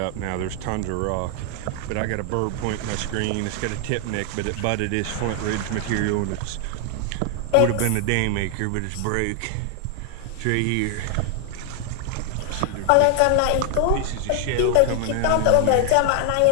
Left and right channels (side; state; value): both; different; correlation 0.00